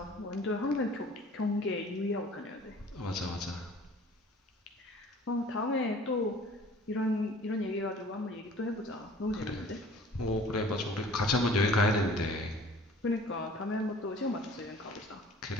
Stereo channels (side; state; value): both; normal; correlation 0.49